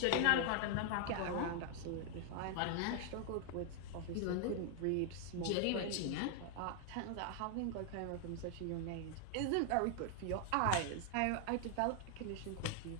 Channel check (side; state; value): both; different; correlation 0.00